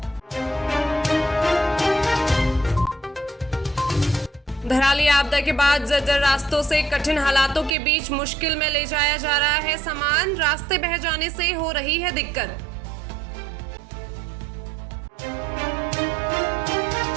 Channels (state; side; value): drops out; left; at 7.8 s